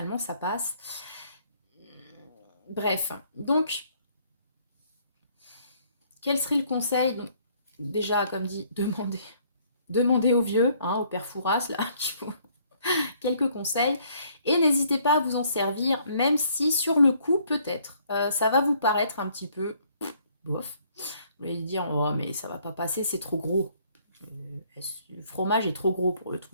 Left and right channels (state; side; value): inverted; both; correlation -0.64